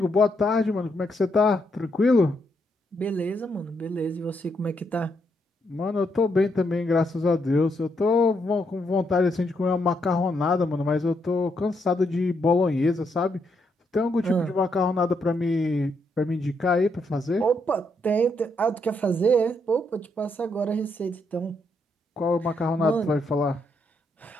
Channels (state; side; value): normal; both; correlation 0.77